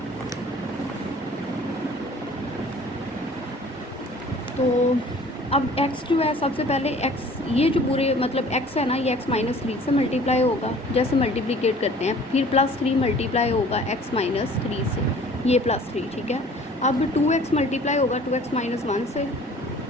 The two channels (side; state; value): both; normal; correlation 0.50